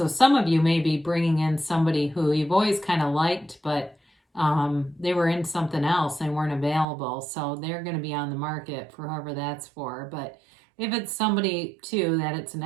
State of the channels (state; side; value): drops out; left; at 6.9 s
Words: some of you may be bringing in somebody who you've always kind of liked, but they were in something else and weren't available. So they're going to be on the market for whoever that's for. But if it's somebody too, that it's an